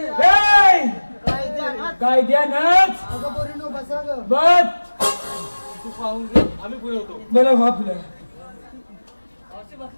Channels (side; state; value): both; inverted; correlation -1.00